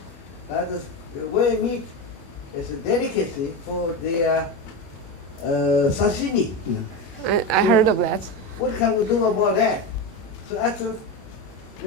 the whale meat is a delicacy for their sashimi. I heard of that. What can we do about that? So after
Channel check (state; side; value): late; right; 21 ms